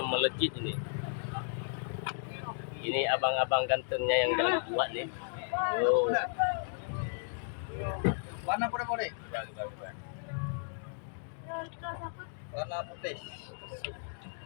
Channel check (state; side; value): silent; right; digital silence